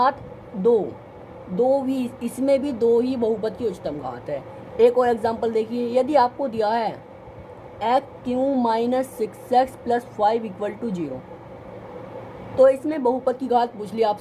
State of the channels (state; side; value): identical; both; correlation 1.00